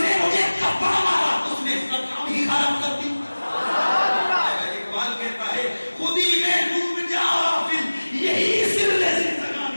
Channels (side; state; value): both; inverted; correlation -1.00